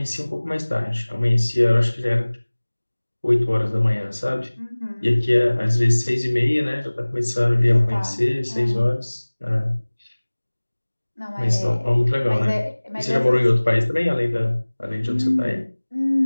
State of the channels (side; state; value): both; inverted; correlation -1.00